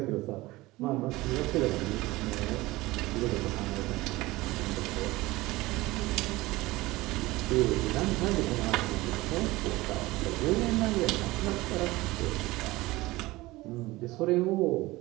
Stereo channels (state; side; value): quieter; left; 19.7 dB